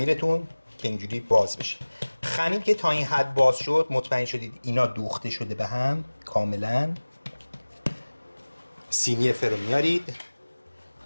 که اینجوری باز بشه. خمیر که تا این حد باز شد مطمئن شدید اینا دوخته شده به هم کاملا. سینی فر رو میارید،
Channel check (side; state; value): both; inverted; correlation -1.00